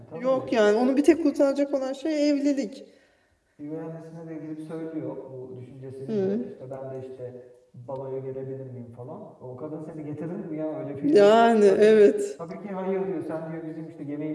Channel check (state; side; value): identical; both; correlation 1.00